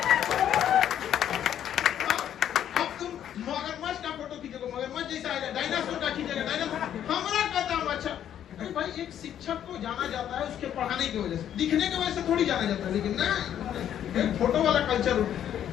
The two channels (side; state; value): right; quieter; 10.2 dB